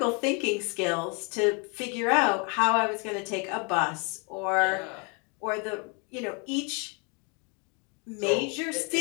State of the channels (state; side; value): quieter; right; 34.2 dB